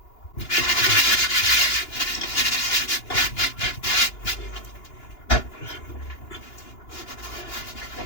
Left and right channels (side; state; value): right; late; 2.9 ms